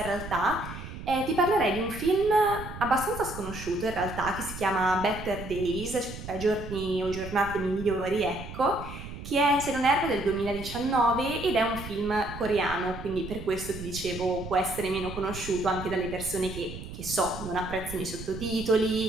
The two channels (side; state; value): right; noise; rumble, 11 dB below the sound